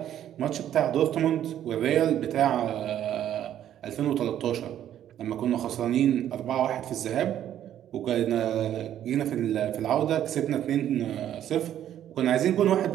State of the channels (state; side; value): quieter; left; 11.0 dB